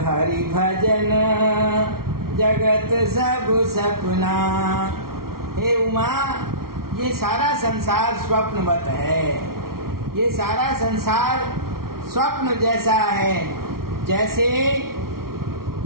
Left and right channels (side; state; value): left; late; 0.93 ms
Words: हरि भजन जगत सब सपना। हे उमा, ये सारा संसार स्वप्नवत है, ये सारा संसार स्वप्न जैसा है। जैसे